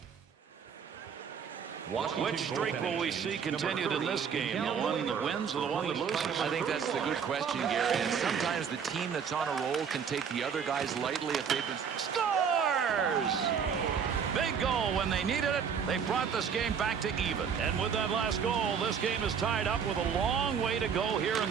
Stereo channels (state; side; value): quieter; left; 7.0 dB